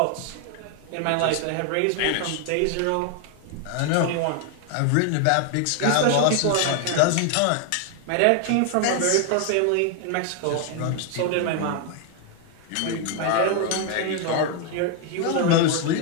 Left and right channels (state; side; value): different; both; correlation 0.00